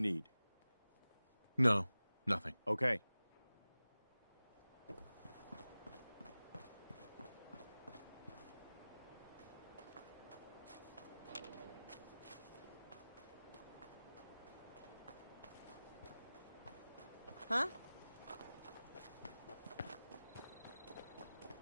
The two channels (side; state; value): both; inverted; correlation -0.97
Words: No, nothing. Okay. Huh?